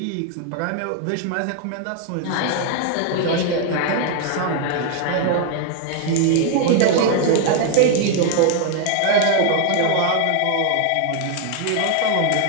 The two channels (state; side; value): different; both; correlation 0.00